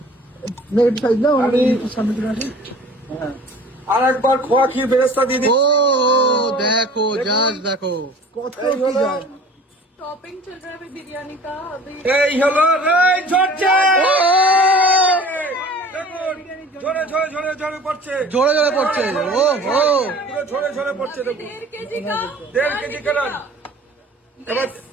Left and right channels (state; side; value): normal; both; correlation 0.45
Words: আর একবার খোয়া খেয়ে বেরেস্তা দিয়ে দিই। ও দেখো, জাস্ট দেখো কত এই কি হলো, যায়। टॉपिंग चल रहा है अभी बिरयानी का अभी। এই হলো এই ঝরছে। দেখুন, ঝরে ঝরে ঝরে ঝরে পড়ছে, জোরে জোরে পড়ছে। ও ও পুরো ঝরে ঝরে পড়ছে। দেখুন 1.5 केजी का 1.5 কেজি কালার। এবার